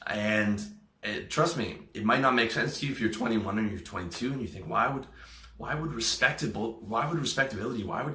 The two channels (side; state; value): both; identical; correlation 1.00